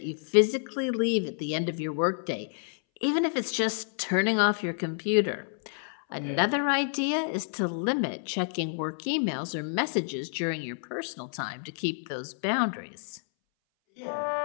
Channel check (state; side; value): silent; right; 58 dB below the other